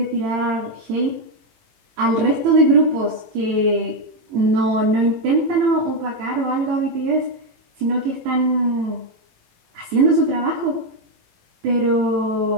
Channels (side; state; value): left; late; 18 ms